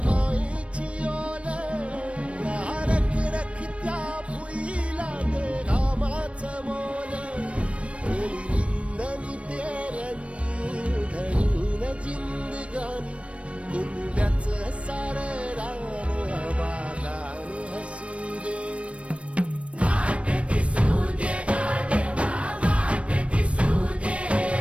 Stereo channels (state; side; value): late; left; 0.061 ms